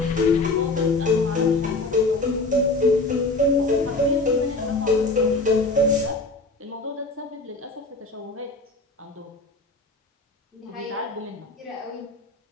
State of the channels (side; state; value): right; quieter; 3.1 dB